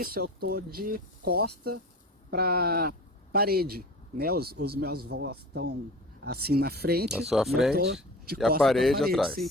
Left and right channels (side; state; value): both; normal; correlation 0.36